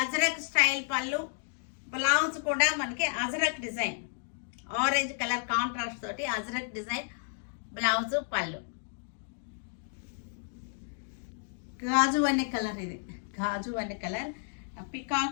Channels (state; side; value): silent; right; 57 dB below the other